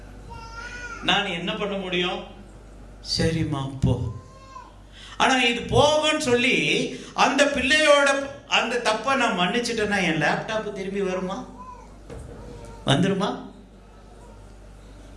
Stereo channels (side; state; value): both; identical; correlation 1.00